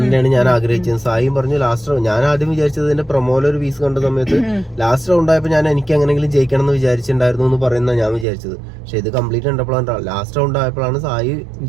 ഞാൻ ആഗ്രഹിച്ചത്. സായിയും പറഞ്ഞു ലാസ്റ്റ് ഞാൻ ആദ്യം വിചാരിച്ചത് ഇതിന്റെ പ്രൊമോയിലൊരു ഒരു പീസ് കണ്ട സമയത്ത് ലാസ്റ്റ് റൗണ്ട് ആയപ്പോൾ ഞാൻ എനിക്ക് എങ്ങനെങ്കിലും ജയിക്കണം എന്ന് വിചാരിച്ചിട്ടുണ്ടായിരുന്നു എന്ന് പറയുന്ന ഞാൻ വിചാരിച്ചത്. പക്ഷെ ഇത് കംപ്ലീറ്റ് കണ്ടപ്പോഴാണ് ലാസ്റ്റ് റൗണ്ട് ആയപ്പോഴാണ് സായി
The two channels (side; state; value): left; drops out; at 8.2 s